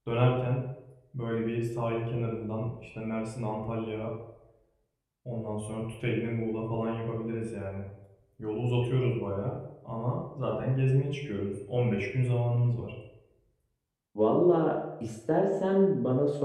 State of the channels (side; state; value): both; identical; correlation 1.00